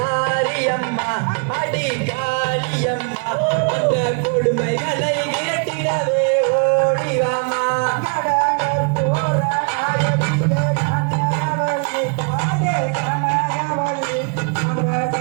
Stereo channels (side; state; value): left; quieter; 37.3 dB